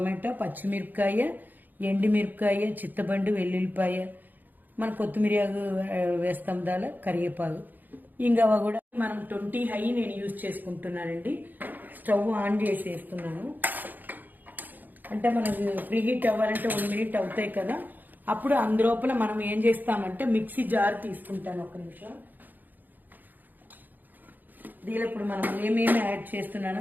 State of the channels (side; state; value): left; late; 0.086 ms